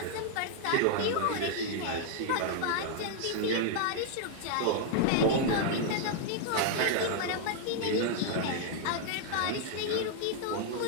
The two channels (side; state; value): both; different; correlation 0.00